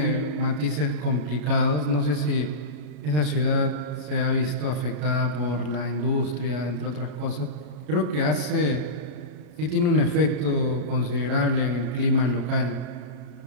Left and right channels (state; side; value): late; left; 33 ms